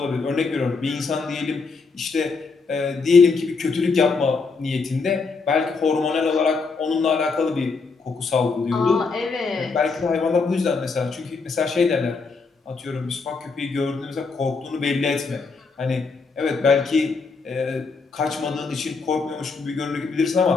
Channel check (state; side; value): quieter; right; 4.5 dB